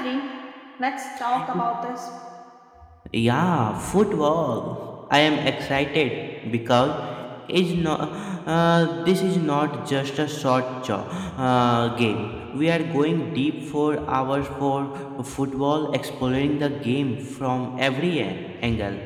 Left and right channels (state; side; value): identical; both; correlation 1.00